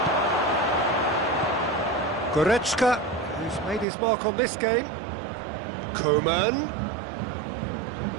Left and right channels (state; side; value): drops out; left; at 3.9 s